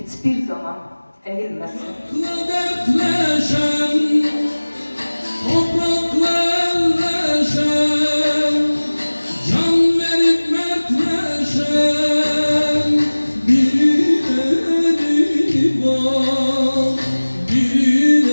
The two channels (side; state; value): both; inverted; correlation -1.00